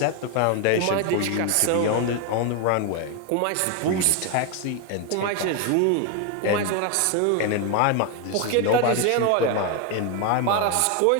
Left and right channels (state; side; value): different; both; correlation 0.01